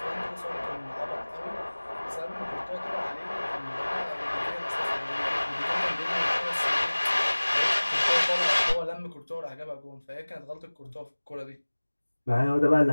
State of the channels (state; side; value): inverted; both; correlation -1.00